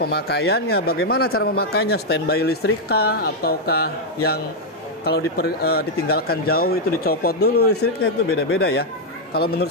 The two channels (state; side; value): normal; both; correlation -0.01